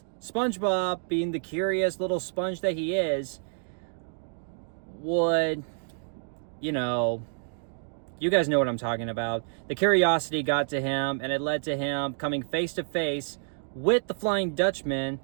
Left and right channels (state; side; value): silent; left; digital silence